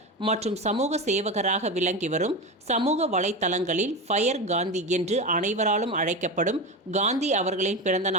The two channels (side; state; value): both; normal; correlation 0.20